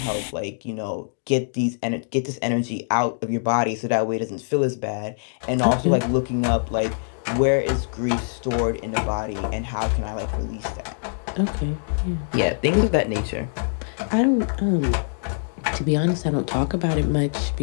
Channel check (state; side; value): silent; right; digital silence